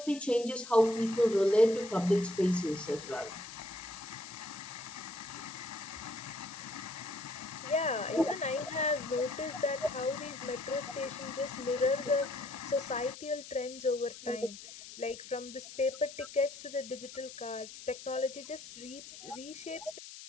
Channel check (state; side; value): noise; left; hiss, 14 dB below the sound